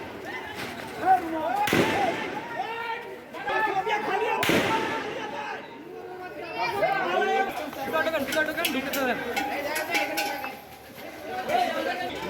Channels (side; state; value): both; identical; correlation 1.00